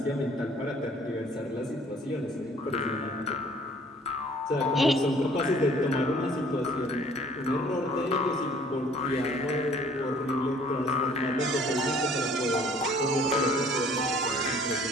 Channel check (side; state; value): both; normal; correlation 0.55